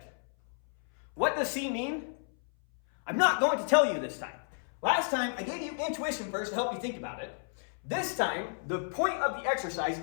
What does C mean? I'm not going to tell you this time. Last time, I gave you intuition first to help you think about it. This time, the point of the exercise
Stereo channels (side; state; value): right; silent; 57 dB below the other